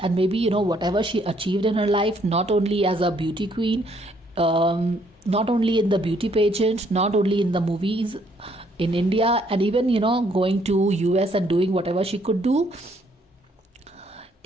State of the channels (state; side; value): normal; both; correlation 0.68